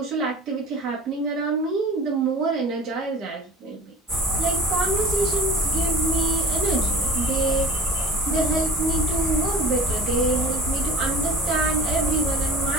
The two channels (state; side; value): normal; both; correlation 0.40